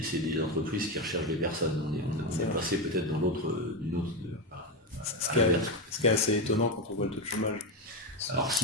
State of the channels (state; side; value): normal; both; correlation 0.11